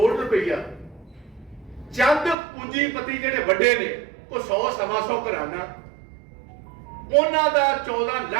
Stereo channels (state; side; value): drops out; left; at 2.4 s